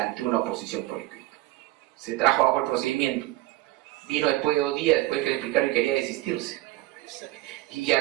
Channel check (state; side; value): quieter; left; 17.6 dB